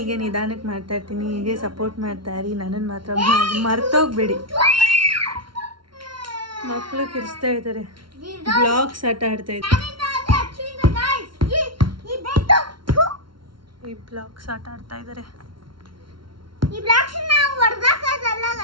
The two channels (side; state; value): left; late; 0.73 ms